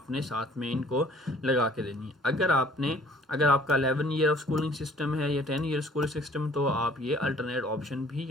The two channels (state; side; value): normal; both; correlation 0.55